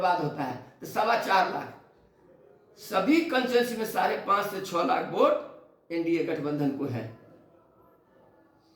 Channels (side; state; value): both; identical; correlation 1.00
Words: होता है, तो 4.25 लाख। सभी कंस्टिट्यूंसी में 5.5 से 6 लाख वोट NDA गठबंधन को है।